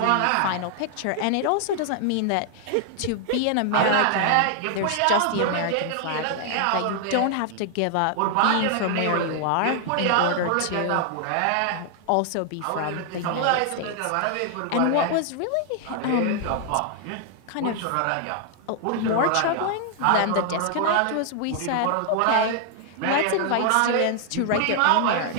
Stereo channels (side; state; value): both; different; correlation 0.00